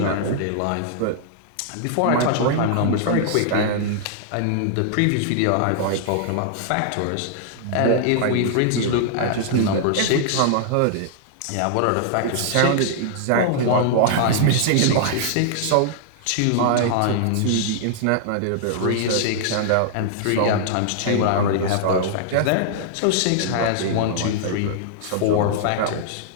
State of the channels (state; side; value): different; both; correlation -0.01